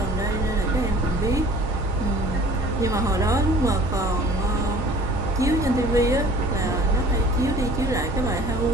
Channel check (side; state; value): both; normal; correlation 0.49